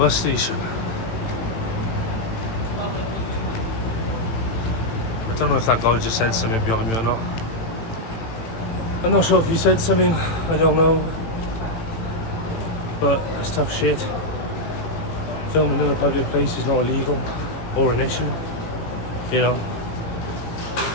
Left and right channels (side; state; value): right; late; 18 ms